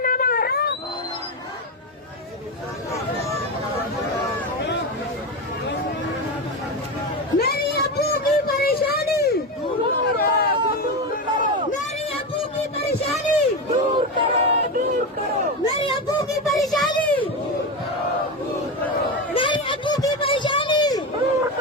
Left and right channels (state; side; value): normal; both; correlation 0.16